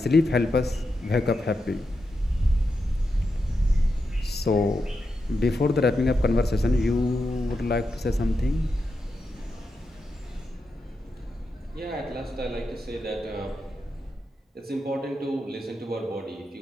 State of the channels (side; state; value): both; normal; correlation 0.87